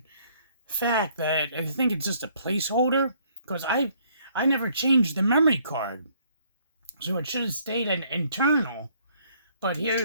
fact that I think it's just a placeholder because I never changed the memory card. So it should have stayed an internal. But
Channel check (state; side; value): inverted; both; correlation -0.64